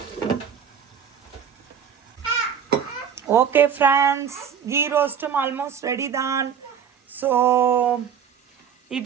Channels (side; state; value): left; quieter; 7.7 dB